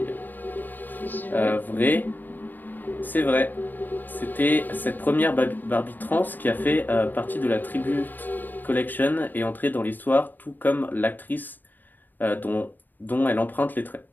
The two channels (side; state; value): right; late; 0.090 ms